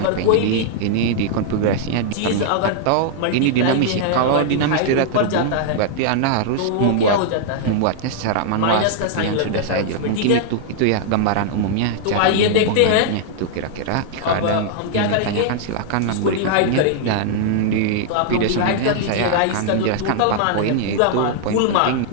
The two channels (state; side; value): different; both; correlation -0.01